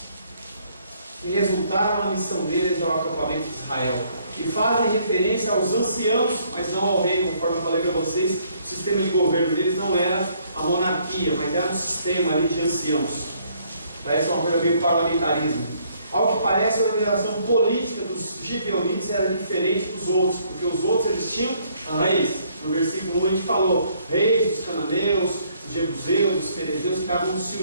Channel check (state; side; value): inverted; both; correlation -0.66